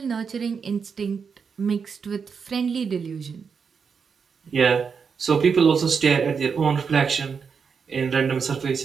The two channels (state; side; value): quieter; left; 6.0 dB